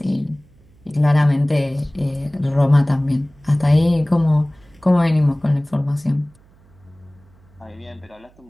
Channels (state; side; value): noise; right; hum, 29 dB below the sound